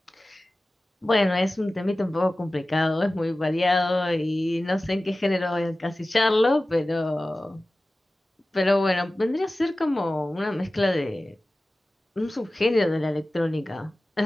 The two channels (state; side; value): normal; both; correlation 0.96